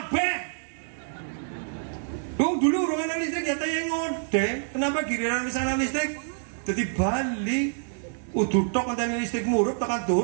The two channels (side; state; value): left; silent; digital silence